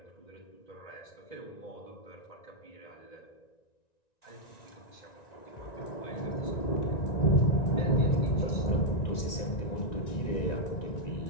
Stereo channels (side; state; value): right; late; 1.9 ms